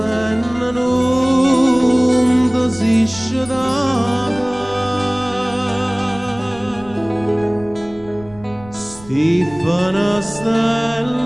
non desisce da Stefana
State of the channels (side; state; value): right; noise; rumble, 21 dB below the sound